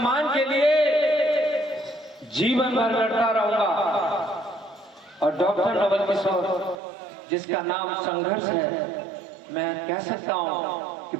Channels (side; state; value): left; drops out; at 6.8 s